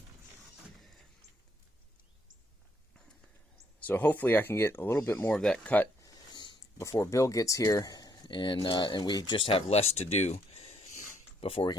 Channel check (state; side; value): normal; both; correlation 0.70